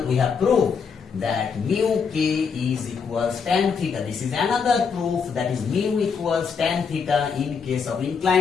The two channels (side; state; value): right; quieter; 5.9 dB